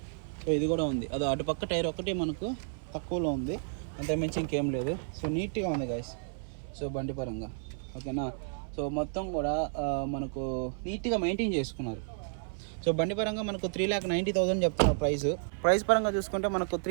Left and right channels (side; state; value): left; silent; 55 dB below the other